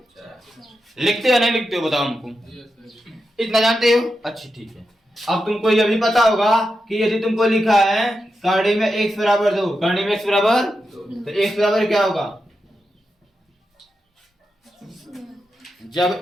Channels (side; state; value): both; normal; correlation 0.88